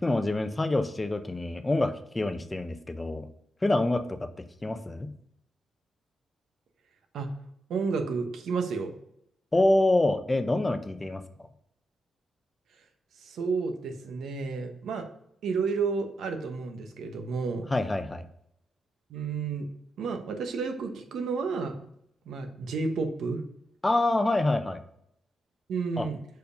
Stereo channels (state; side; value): normal; both; correlation 0.87